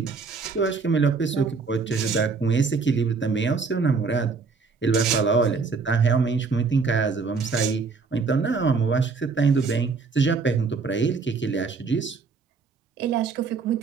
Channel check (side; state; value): left; quieter; 4.7 dB